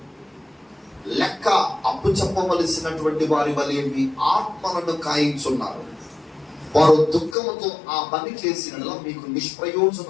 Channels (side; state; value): right; drops out; at 7.4 s